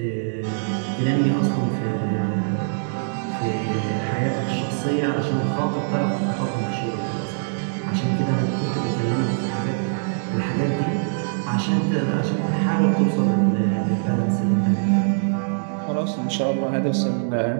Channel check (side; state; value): left; silent; digital silence